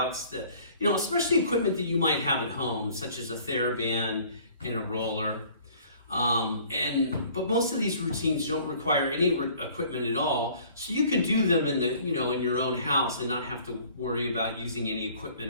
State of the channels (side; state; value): both; inverted; correlation -0.54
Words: that, especially equipment that you might have at home, such as a TheraBand and a roller. But most of these routines don't require any equipment at all, so you can do them in in your own house and not have to worry about using any